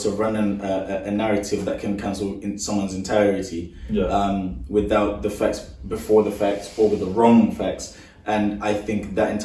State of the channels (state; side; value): identical; both; correlation 1.00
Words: run a narrative that can cancel in someone's entirety without the facts before the facts or with the wrong facts. And I think that